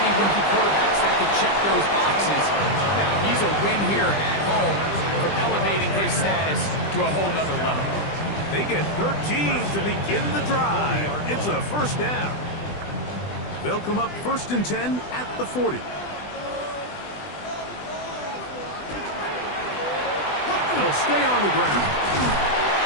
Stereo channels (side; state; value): right; late; 20 ms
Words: rookie quarterbacks that can check those boxes. Now, he's a win here at home from elevating his status to a whole nother level. They get 13 to begin the drive. It's a first down. They'll come up 1st and 10 at the 40. They'll stay on the ground.